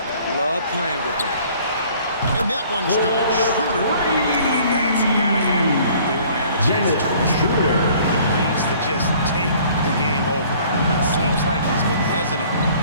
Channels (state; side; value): inverted; both; correlation -0.55